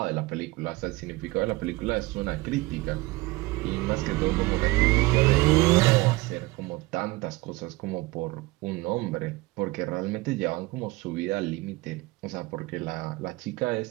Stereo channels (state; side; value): quieter; left; 21.1 dB